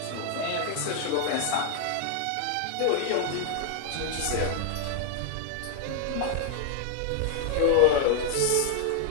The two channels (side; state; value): both; different; correlation 0.00